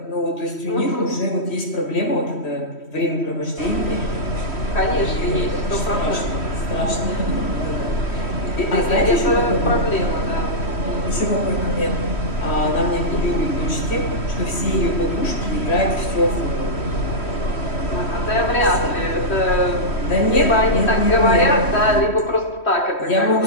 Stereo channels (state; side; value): late; right; 3.1 ms